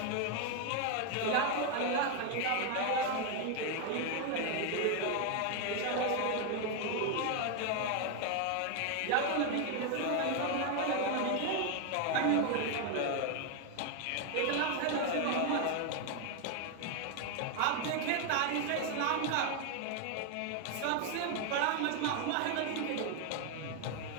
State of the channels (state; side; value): different; both; correlation 0.01